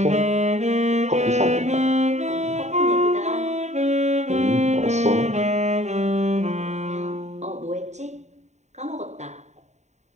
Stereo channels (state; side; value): late; left; 0.34 ms